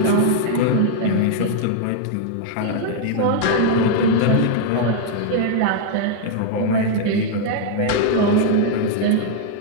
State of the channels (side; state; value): both; different; correlation 0.00